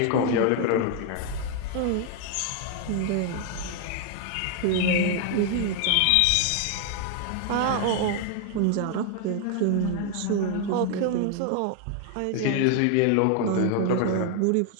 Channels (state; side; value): different; both; correlation 0.00